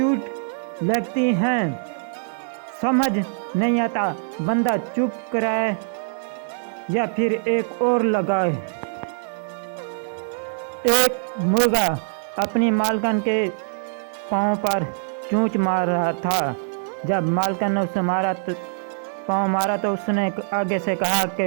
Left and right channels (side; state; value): left; silent; digital silence